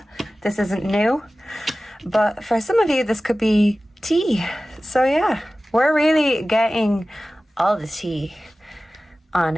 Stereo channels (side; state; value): both; normal; correlation 0.96